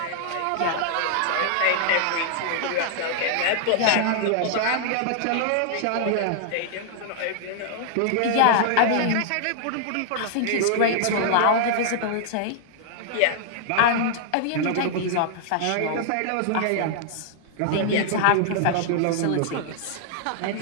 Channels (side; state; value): both; different; correlation -0.01